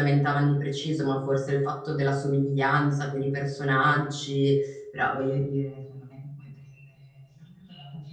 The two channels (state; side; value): identical; both; correlation 1.00